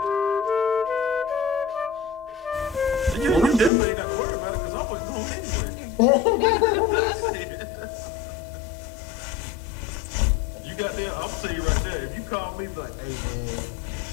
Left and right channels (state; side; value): drops out; right; at 3.7 s